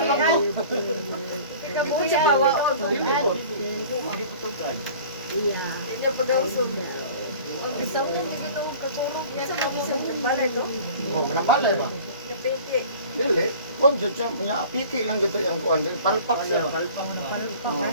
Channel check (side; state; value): both; inverted; correlation -0.44